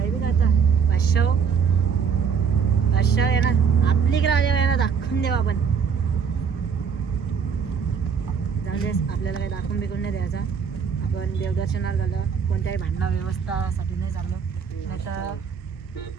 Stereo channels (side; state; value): left; quieter; 6.7 dB